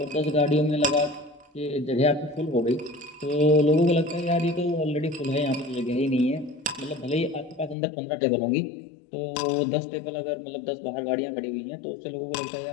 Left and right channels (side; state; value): right; drops out; at 7.8 s